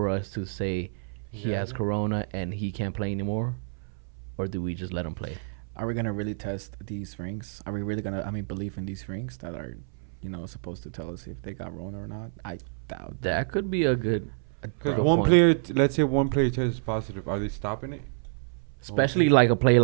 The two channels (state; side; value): silent; left; 59 dB below the other